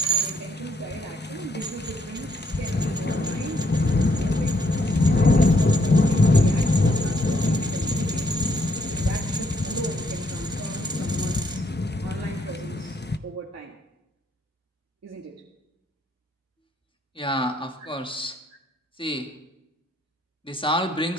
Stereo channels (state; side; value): normal; both; correlation 0.71